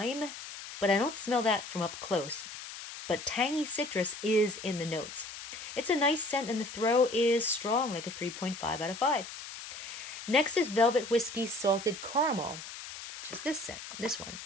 but I don't smell that from up close. But tangy citrus is in the notes. It's a nice scent, and the throw is strong, like a 3.5 out of 5. Next is Velvet Whiskey Salted Caramel, which is this one.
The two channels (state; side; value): noise; left; hiss, 11 dB below the sound